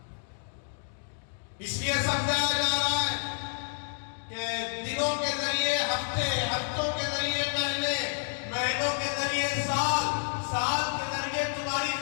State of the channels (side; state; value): right; silent; 58 dB below the other